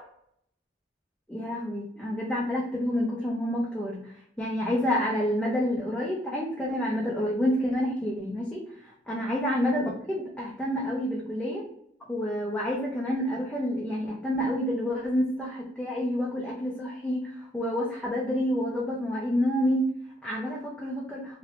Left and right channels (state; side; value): normal; both; correlation 0.69